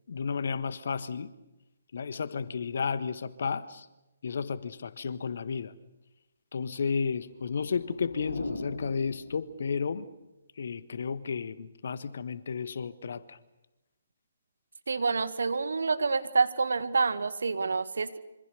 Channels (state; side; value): inverted; both; correlation -0.84